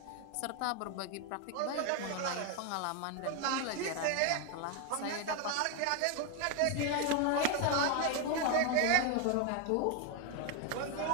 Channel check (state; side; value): different; both; correlation 0.01